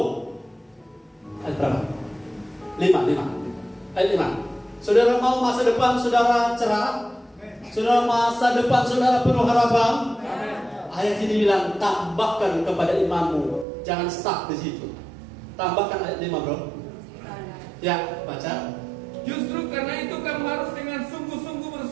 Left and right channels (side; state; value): left; drops out; at 13.7 s